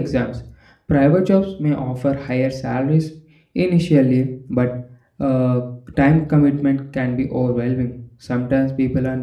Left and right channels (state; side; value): identical; both; correlation 1.00